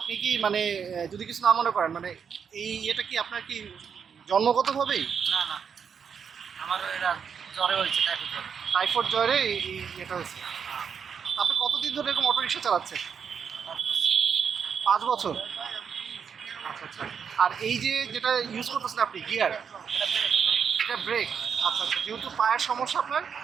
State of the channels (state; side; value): quieter; left; 6.9 dB